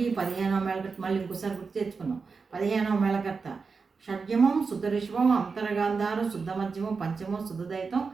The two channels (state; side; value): quieter; left; 4.8 dB